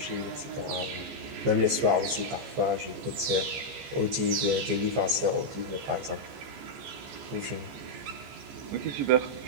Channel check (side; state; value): left; late; 14 ms